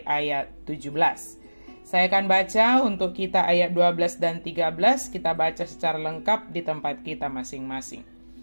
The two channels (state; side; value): inverted; both; correlation -1.00